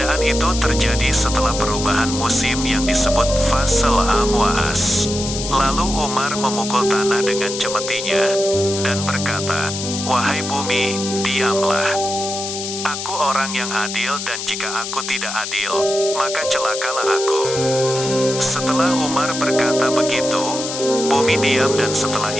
itu terjadi setelah perubahan musim yang disebut fasal amwaas. Lalu Umar memukul tanah dengan cemetinya, dan berkata, "Wahai bumi, diamlah. Aku orang yang adil dan jika aku tidak adil, maka celakalah aku." Setelah Umar berkata begitu, bumi diam dan setelah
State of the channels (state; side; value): noise; left; hiss, 6 dB below the sound